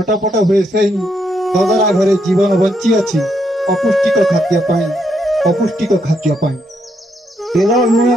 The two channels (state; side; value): normal; both; correlation 0.77